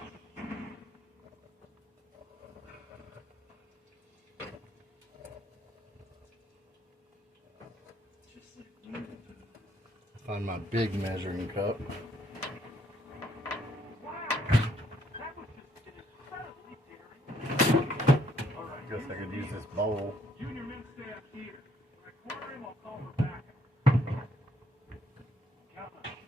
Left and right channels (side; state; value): both; normal; correlation 0.69